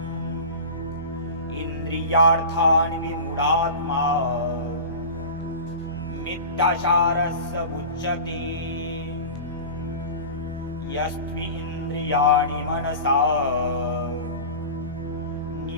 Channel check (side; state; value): both; inverted; correlation -0.32